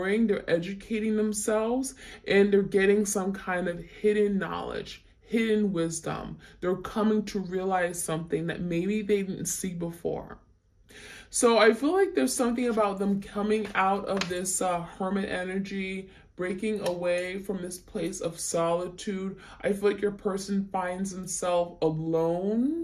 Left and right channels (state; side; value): identical; both; correlation 1.00